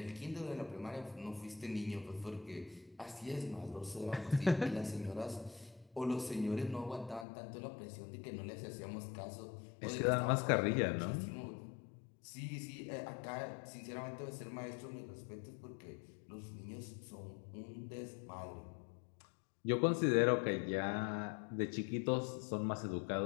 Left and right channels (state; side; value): drops out; right; at 7.2 s